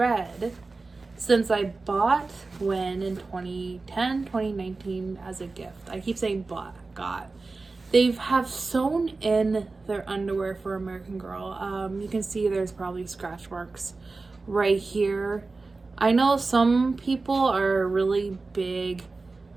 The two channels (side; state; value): left; quieter; 3.7 dB